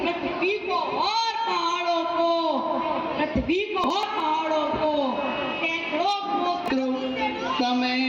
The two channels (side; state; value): both; identical; correlation 1.00